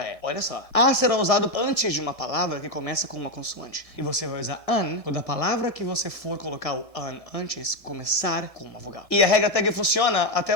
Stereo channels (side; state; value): right; late; 1.7 ms